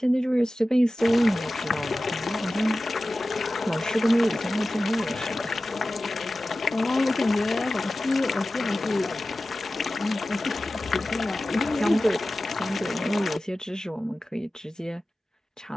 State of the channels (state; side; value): normal; both; correlation 0.95